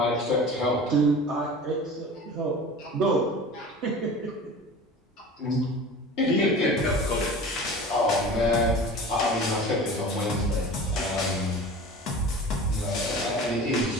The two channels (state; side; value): normal; both; correlation 0.38